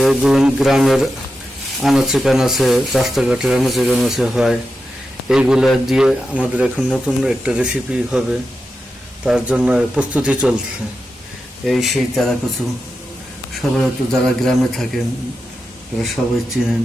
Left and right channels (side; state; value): both; normal; correlation 0.90